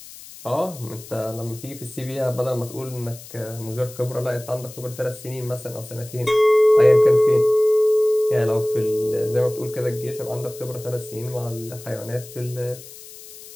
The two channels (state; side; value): noise; left; hiss, 17 dB below the sound